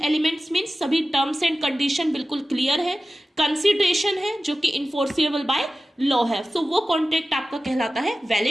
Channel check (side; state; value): both; normal; correlation 0.95